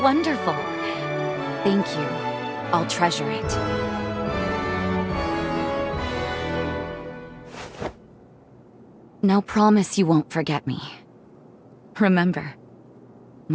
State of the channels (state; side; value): identical; both; correlation 1.00